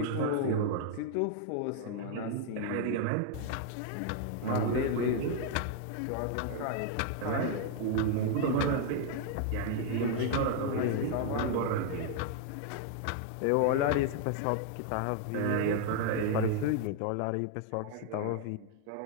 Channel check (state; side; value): different; both; correlation 0.00